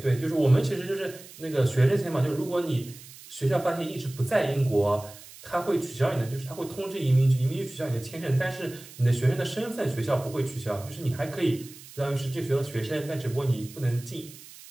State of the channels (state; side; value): noise; right; hiss, 18 dB below the sound